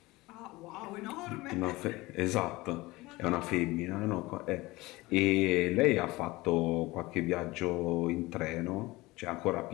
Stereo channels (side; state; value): right; quieter; 20.7 dB